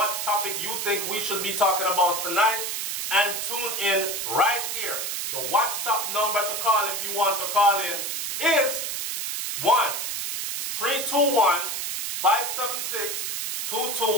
topic you think we should be talking about tonight, and tune in right here. The WhatsApp number to call if you want to call in is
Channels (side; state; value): right; noise; hiss, 3 dB below the sound